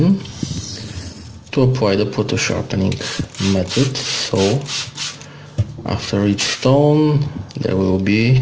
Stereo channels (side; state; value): both; identical; correlation 1.00